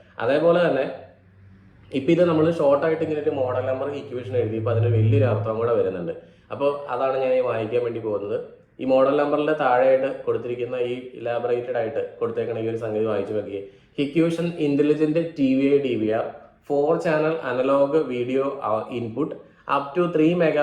അതേപോലെ തന്നെ ഇപ്പം ഇത് നമ്മൾ ഷോർട്ടായിട്ട് ഇങ്ങനെ ഒരു മോഡൽ നമ്പർ ഇക്വേഷൻ എഴുതിയപ്പോൾ അതിന് വലിയൊരു അർത്ഥം കൂടെ വരുന്നുണ്ട്. അപ്പോൾ അതാണ് ഞാൻ ഈ വായിക്കാൻ വേണ്ടി പോകുന്നത്. ഈ മോഡൽ നമ്പറിൻ്റെ താഴെയായിട്ട് കൊടുത്തിരിക്കുന്ന ഈ ഇലാബറേറ്റഡ് ആയിട്ട് കൊടുത്തേക്കണ ഈ ഒരു സംഗതി വായിച്ചു നോക്കിയേ. Hikvision intelligent TVI DVR 4 channel analogue video input, up to 3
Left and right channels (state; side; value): identical; both; correlation 1.00